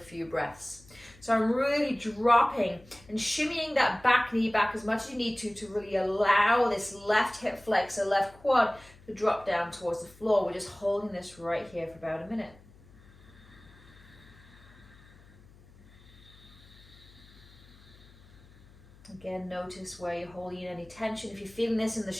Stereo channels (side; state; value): left; noise; hum, 24 dB below the sound